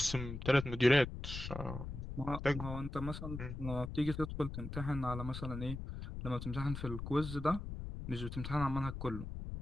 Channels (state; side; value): noise; left; rumble, 7 dB below the sound